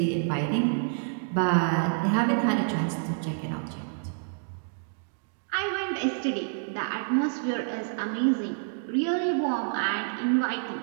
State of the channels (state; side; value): silent; left; digital silence